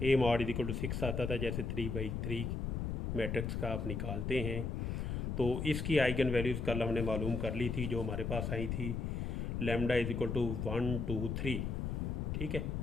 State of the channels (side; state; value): left; noise; rumble, 2 dB below the sound